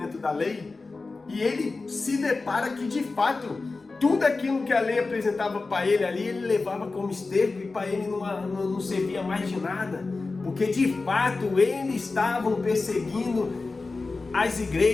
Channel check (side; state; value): right; quieter; 3.8 dB